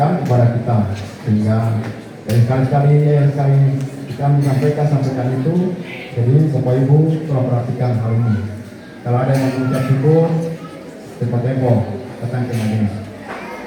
kepada kita, sehingga sekali-sekali kita sampaikan itu. Jadi Bapak Ibu tolong perhatikan hal ini. Kalau ada yang mengucap syukur, cepat tempo datang ke majelis.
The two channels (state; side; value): identical; both; correlation 1.00